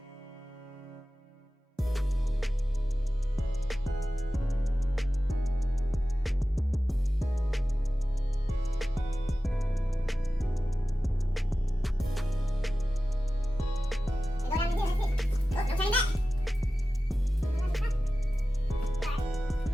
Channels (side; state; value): both; normal; correlation 0.95